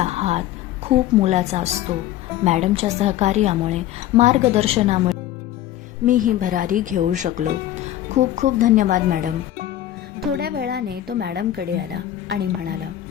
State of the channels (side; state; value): right; quieter; 12.8 dB